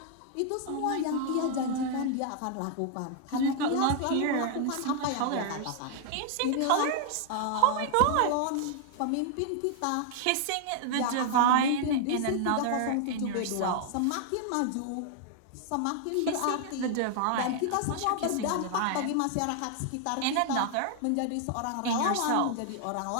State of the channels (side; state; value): both; different; correlation 0.00